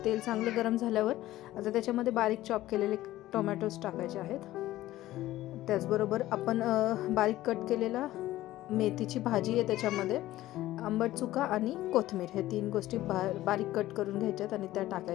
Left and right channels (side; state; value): right; quieter; 15.5 dB